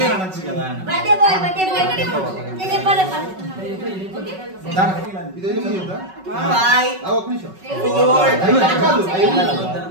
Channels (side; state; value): left; late; 5.3 ms